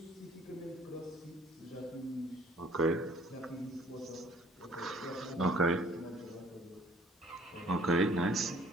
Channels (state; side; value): normal; both; correlation 0.57